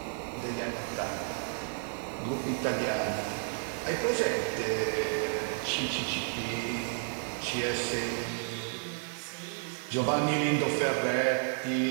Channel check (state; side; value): silent; left; 57 dB below the other